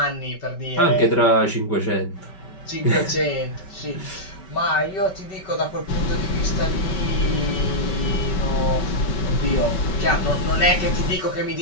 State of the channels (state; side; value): late; right; 5.2 ms